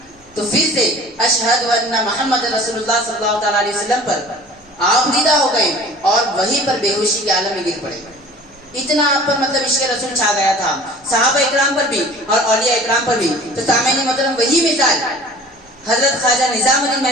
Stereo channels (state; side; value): normal; both; correlation 0.45